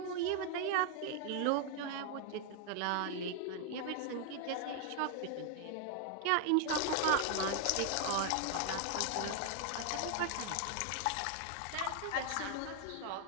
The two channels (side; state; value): both; different; correlation 0.00